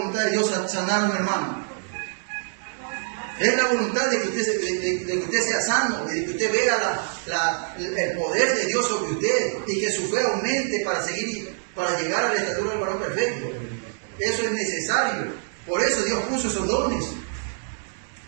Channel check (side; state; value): left; silent; digital silence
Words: de Dios sanar a un hermano? Es la voluntad de que usted sea sano, de que usted vea el poder de Dios sobre usted y que su fe aumente para llegar a la estatura del varón perfecto. Eso es necesario. Por eso Dios puso esos dones.